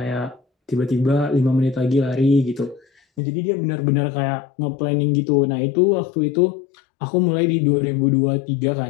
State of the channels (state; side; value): drops out; right; at 3.2 s